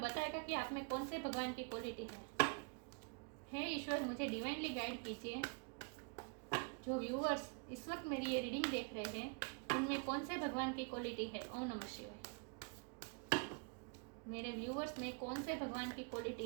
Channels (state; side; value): quieter; left; 36.7 dB